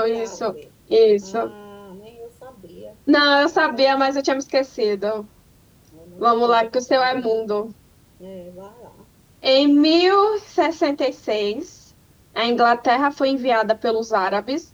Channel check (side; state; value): both; identical; correlation 1.00